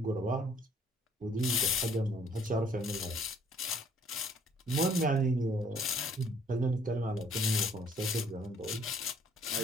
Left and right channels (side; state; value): both; normal; correlation 0.61